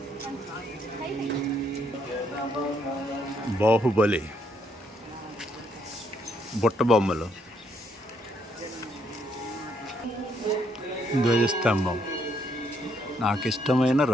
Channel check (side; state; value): both; normal; correlation 0.72